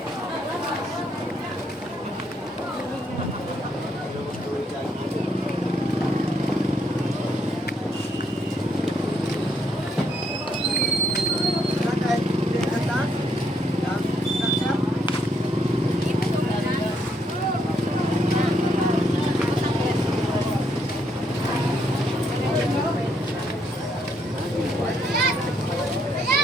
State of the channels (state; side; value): normal; both; correlation 0.73